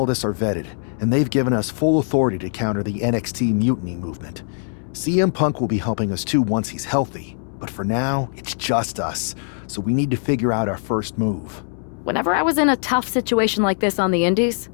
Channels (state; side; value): silent; right; 64 dB below the other